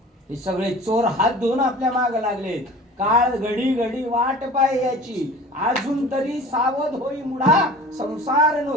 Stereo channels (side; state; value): both; normal; correlation 0.41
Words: हे सगळे चोर हात धुवून आपल्या माग लागलेत. काळ घडी घडी वाट पाय याची, अजून तरी सावध होई मुडा. संसार